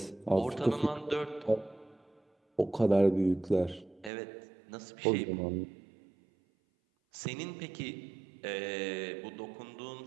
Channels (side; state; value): left; drops out; at 4.1 s